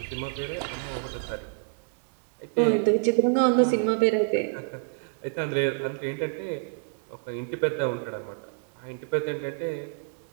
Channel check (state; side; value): silent; left; 59 dB below the other